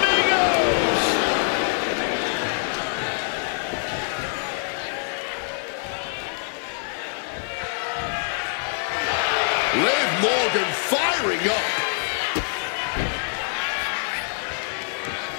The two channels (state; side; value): silent; right; 60 dB below the other